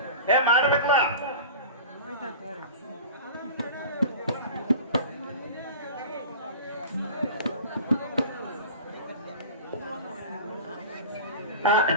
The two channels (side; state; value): both; inverted; correlation -0.36